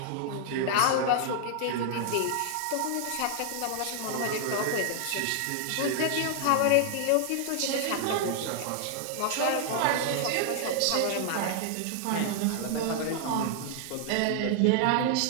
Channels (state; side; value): different; both; correlation 0.00